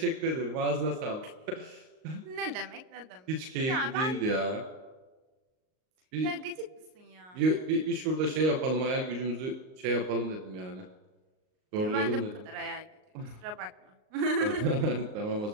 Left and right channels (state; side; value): late; left; 38 ms